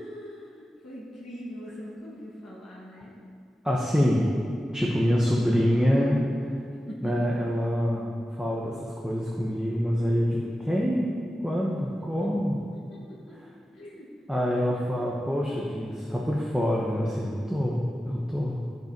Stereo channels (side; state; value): both; normal; correlation 0.93